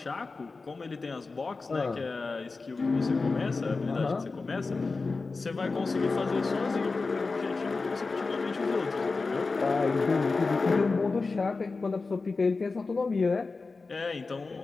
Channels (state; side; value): quieter; right; 4.0 dB